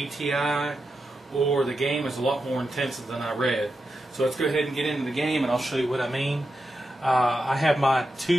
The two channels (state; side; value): normal; both; correlation 0.88